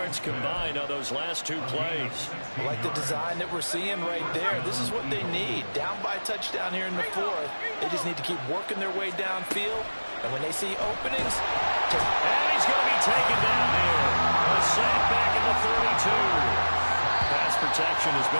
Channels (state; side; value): inverted; both; correlation -1.00